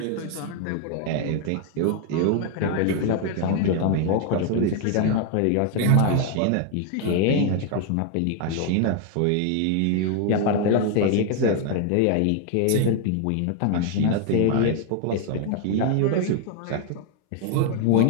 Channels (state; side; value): different; both; correlation 0.01